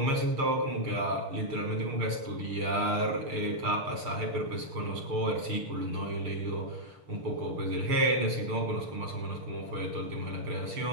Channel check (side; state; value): left; late; 6.7 ms